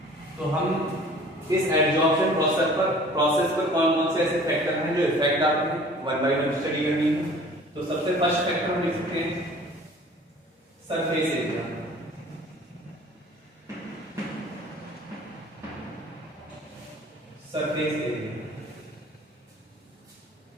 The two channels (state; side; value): normal; both; correlation 0.48